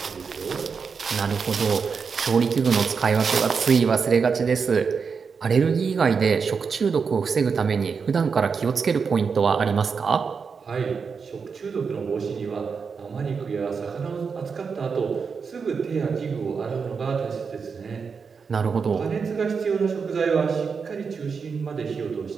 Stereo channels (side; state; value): left; quieter; 5.6 dB